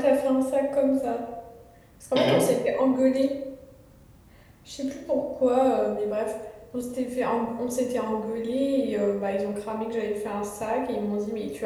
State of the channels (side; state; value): both; identical; correlation 1.00